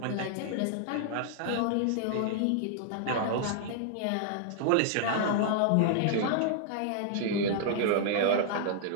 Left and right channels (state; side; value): different; both; correlation -0.01